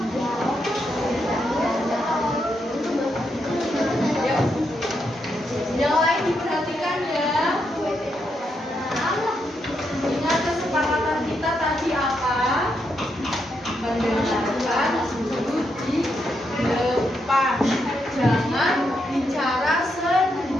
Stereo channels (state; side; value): normal; both; correlation 0.81